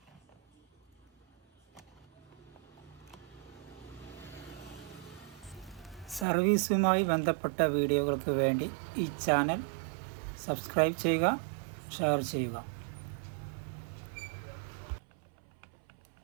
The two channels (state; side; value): drops out; left; at 6.2 s